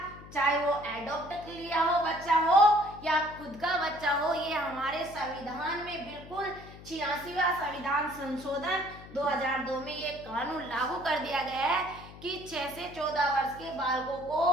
चाहे वो एडॉप्ट लिया हो बच्चा हो या खुद का बच्चा हो, ये हमारे संविधान में बिल्कुल 86वां संविधान संशोधन 2002 में ये कानून लागू कर दिया गया है कि 6 से 14 वर्ष के बालकों को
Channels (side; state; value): left; noise; hum, 17 dB below the sound